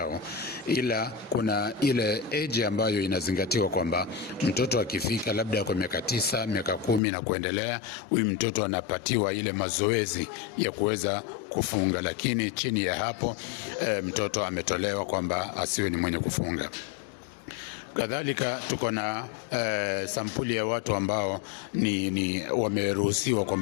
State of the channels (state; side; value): drops out; right; at 7.0 s